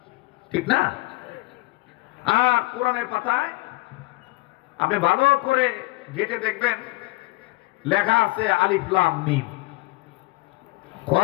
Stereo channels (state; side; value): quieter; right; 22.8 dB